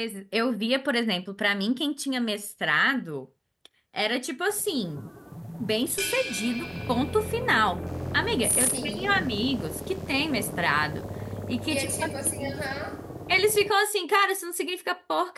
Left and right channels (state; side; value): identical; both; correlation 1.00